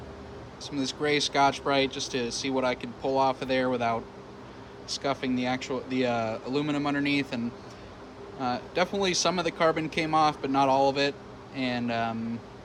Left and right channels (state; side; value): identical; both; correlation 1.00